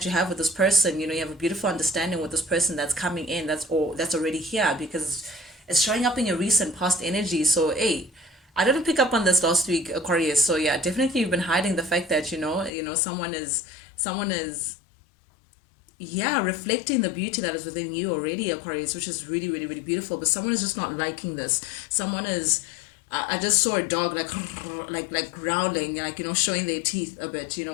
you have with this person. You have a beautiful understanding with this person that's coming in. That's already here, because it's showing up in your recent past energy. So, hey, I didn't pick up on this last week, Aquarius. So yeah, definitely you've been hiding the fact that someone is yeah, reflecting the beauty that is within you already, Aquarius, which is really, really, really beautiful. But someone is just not liking this. Someone is. I just saw a dog like like growling, like showing their teeth a bit.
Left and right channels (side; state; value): right; drops out; at 12.7 s